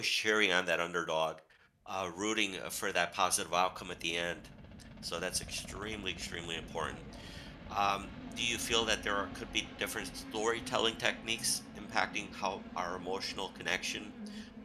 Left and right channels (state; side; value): identical; both; correlation 1.00